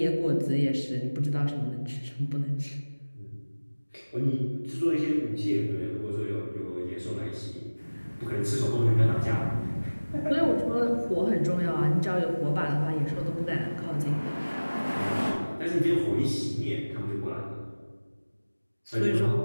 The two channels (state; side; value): inverted; both; correlation -1.00